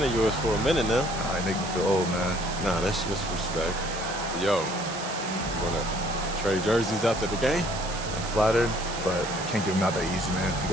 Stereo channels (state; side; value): noise; right; hiss, 10 dB below the sound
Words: of yours for a minute now. Nah, you make me feel old, man. Nah, that's just respect. Yo, you wanna trade jerseys after the game? I'm flattered, but I can't give them out that easy, man. You